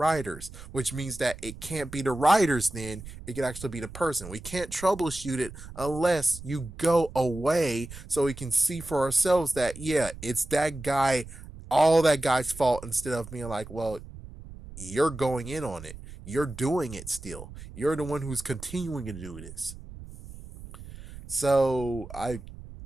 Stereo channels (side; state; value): right; noise; rumble, 15 dB below the sound